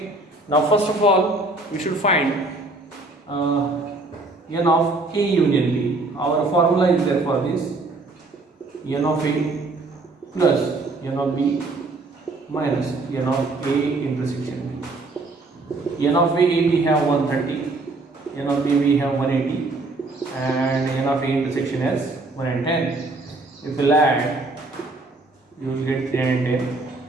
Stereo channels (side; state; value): left; quieter; 3.2 dB